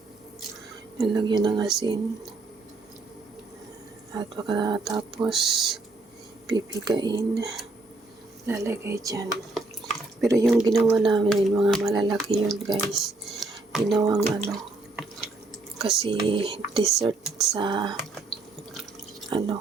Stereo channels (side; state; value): left; quieter; 3.2 dB